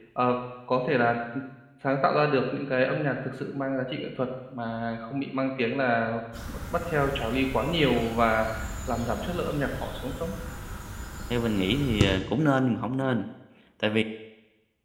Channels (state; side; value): identical; both; correlation 1.00